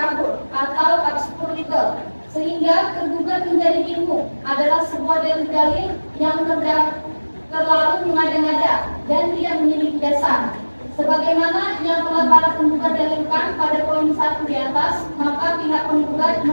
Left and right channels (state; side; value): inverted; both; correlation -1.00